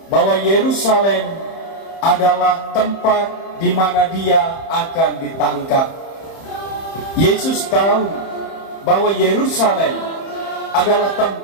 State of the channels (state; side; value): late; right; 30 ms